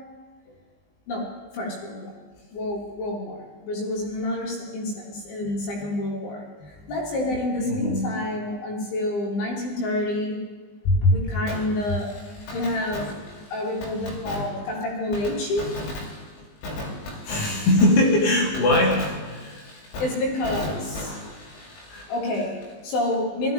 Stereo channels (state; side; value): late; right; 20 ms